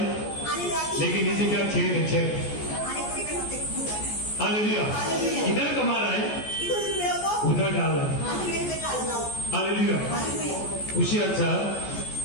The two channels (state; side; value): late; right; 14 ms